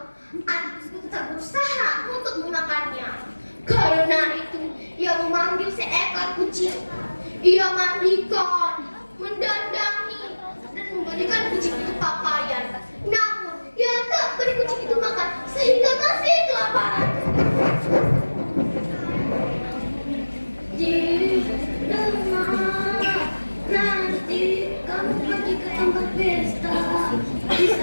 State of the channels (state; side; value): inverted; both; correlation -1.00